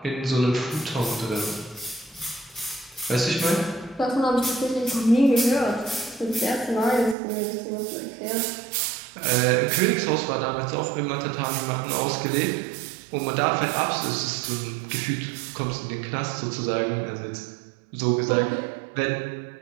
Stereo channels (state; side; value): drops out; left; at 7.2 s